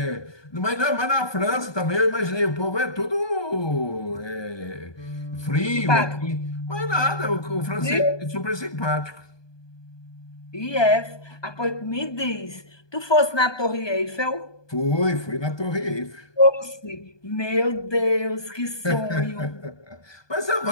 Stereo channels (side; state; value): right; late; 1.2 ms